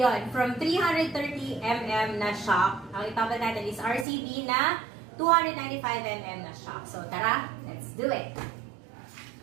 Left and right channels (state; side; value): drops out; left; at 4.0 s